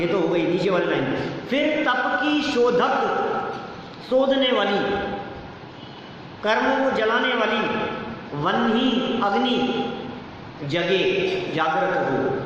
तो हो गई नीचे वाली लाइन। फिर तप की शोधक, शोधने वाली, कर्मों को जलाने वाली, वन्ही अग्नि जगे, जागृत हो।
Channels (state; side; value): identical; both; correlation 1.00